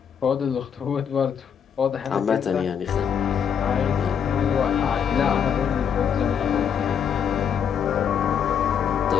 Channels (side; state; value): right; quieter; 7.8 dB